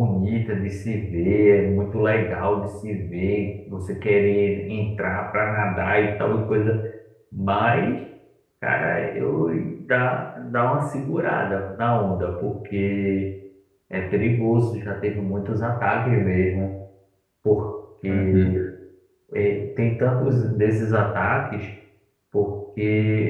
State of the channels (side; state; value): both; identical; correlation 1.00